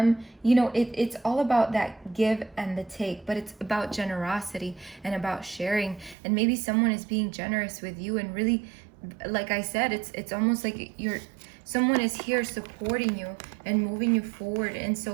You know, it's all about that give and the take, but it's about generosity and about sharing. And maybe someone is being generous with you, and really, like I said, it's almost like someone is here supporting you and moving you forward. And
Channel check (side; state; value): left; drops out; at 6.2 s